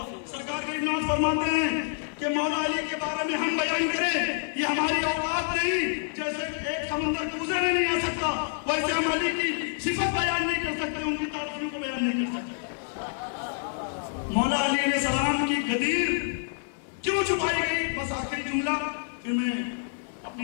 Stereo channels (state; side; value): silent; right; digital silence